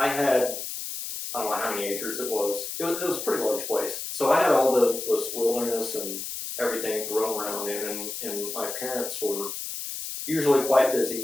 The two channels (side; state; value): left; noise; hiss, 6 dB below the sound